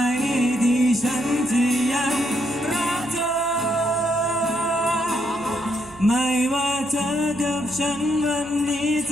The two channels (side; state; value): right; noise; hum, 22 dB below the sound